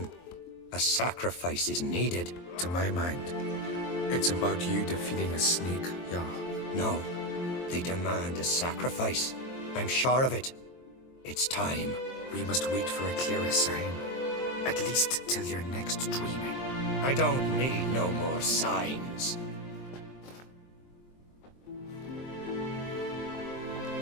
A sacrifice is needed. To my mind, it's about you defeating a snake, Jarl. No, they demand a sacrifice. I'm sure of it. It's time. We must wait for a clearer sign. At least till your next dreaming. I don't need no more signs.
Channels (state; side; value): late; right; 23 ms